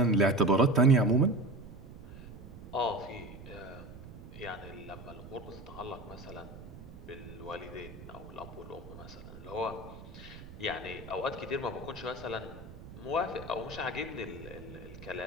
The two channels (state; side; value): noise; right; rumble, 14 dB below the sound